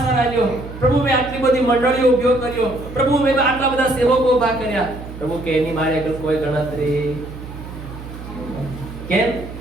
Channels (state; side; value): noise; right; hum, 12 dB below the sound